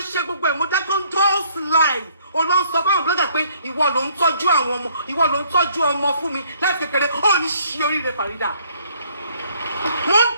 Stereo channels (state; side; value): inverted; both; correlation -0.63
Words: ṣe gbogbo ẹ̀ mo dákẹ́ ń toast live. Ó lọ sọ báwọn blogger pé ìwọ ló ń tọ́jú àwọn ọmọ, ìwọ ló ń tọ́jú ọmọ fún mi láti kékeré. Ó ní ṣí oríire Phereeda. Mo ń